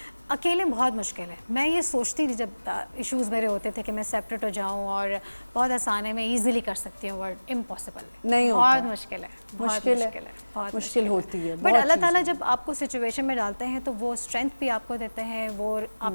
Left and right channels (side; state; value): both; inverted; correlation -1.00